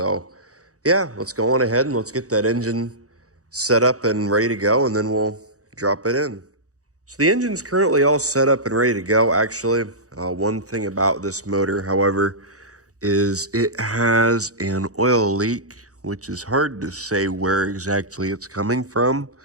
yeah, let's go on ahead and let's get that engine set up and ready to go, and then we'll drop it in. So the engine's currently all set up and ready to go. Actually, one thing about this motor, however, is it has an oil leak, which is hard to say where exactly it's coming from.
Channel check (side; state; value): left; late; 0.66 ms